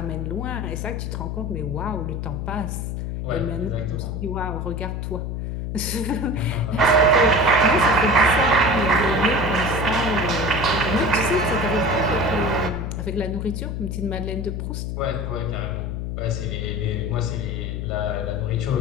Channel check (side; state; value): left; noise; hum, 3 dB below the sound